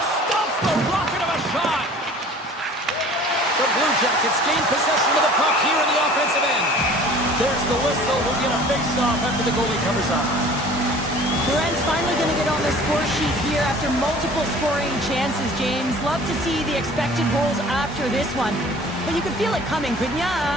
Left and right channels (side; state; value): both; normal; correlation 0.47